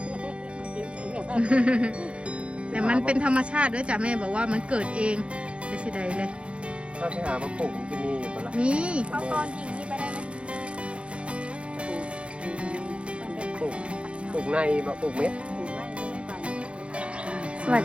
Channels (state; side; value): late; left; 0.059 ms